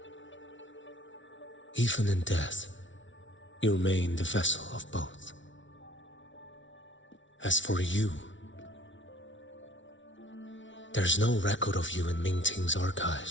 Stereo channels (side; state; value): right; late; 0.55 ms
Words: Even in death, you remain the vessel of both. As for you, there's no record of you in Mingting's